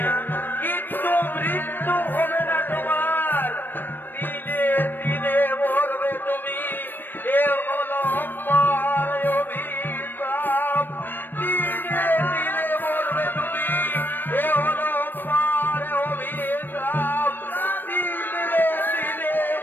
কিন্তু মৃত্যু হবে না তোমার। দিনে দিনে মরবে তুমি, এ হলো আমার অভিশাপ। দিনে দিনে মরবে তুমি, এ হলো আমার অভিশাপ। দিনে দিনে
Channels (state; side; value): late; right; 0.094 ms